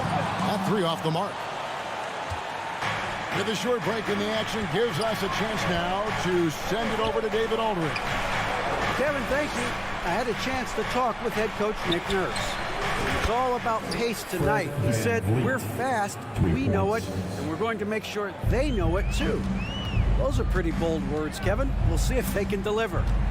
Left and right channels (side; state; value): both; identical; correlation 1.00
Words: That 3 off the mark. With a short break in the action gives us a chance now to send it over to David Aldridge. Kevin, thank you. I had a chance to talk with head coach Nick Nurse. It's all about pace tonight. He said, we're fast, we know it, and we're going to make sure they know it too. Those are pretty bold words, Kevin. We'll see if they can deliver.